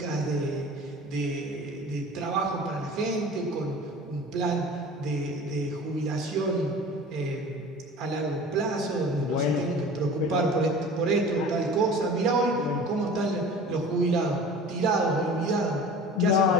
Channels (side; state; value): both; normal; correlation 0.40